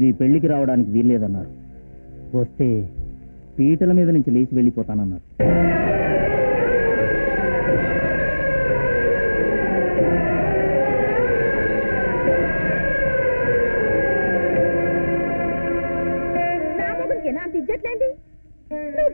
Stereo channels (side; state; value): both; inverted; correlation -1.00